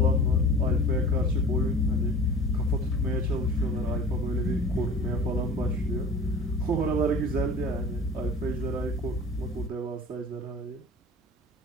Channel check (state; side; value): normal; both; correlation 0.41